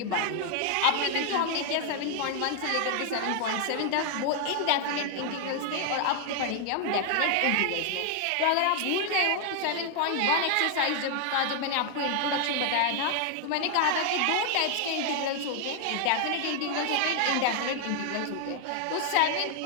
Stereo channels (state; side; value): different; both; correlation 0.00